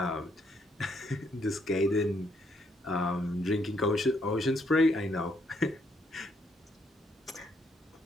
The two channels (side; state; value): both; normal; correlation 0.73